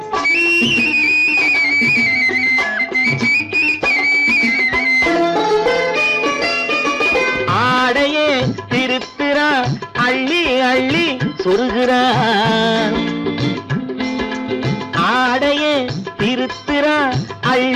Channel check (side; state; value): both; identical; correlation 1.00